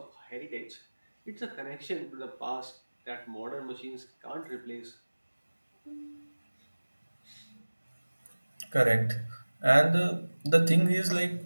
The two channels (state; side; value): inverted; both; correlation -1.00